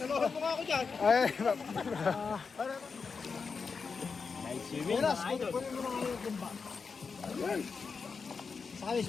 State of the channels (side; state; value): right; quieter; 5.2 dB